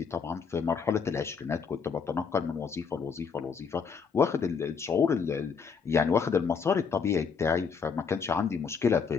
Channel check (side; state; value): right; quieter; 5.9 dB